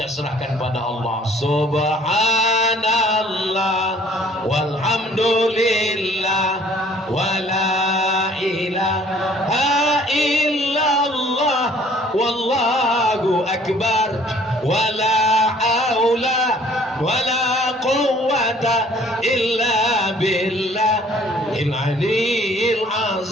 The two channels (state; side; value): normal; both; correlation 0.57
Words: serahkan pada Allah. Subhanallah walhamdulillah wala ilaha illallah wallahu akbar wala haula wala quwwata illa billahil aliyil